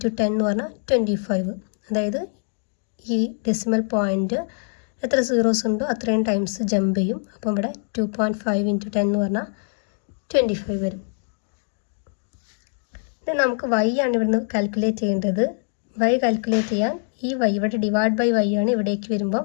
10 എന്ന് പറഞ്ഞാൽ 25. അതായത് ഈ ഡെസിമൽ പോയിൻ്റ് എത്ര സീറോസ് ഉണ്ടോ അത്രയും ടൈംസ് ജമ്പ് ചെയ്യും. അപ്പം ഇവിടെ 2.5 ഇൻറ്റു 10 എന്ന് പറഞ്ഞാൽ 25 വരും. ഇത് നമുക്ക് y ആണ് ഇവിടുന്ന് കാൽക്കുലേറ്റ് ചെയ്യേണ്ടത്. y കാൽക്കുലേറ്റ് ചെയ്യാൻ ഈ y ഇവിടെ ഡിവൈഡ് ബൈ y ആണ്, ഇവിടേക്ക് വരുമ്പോൾ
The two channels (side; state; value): right; silent; 63 dB below the other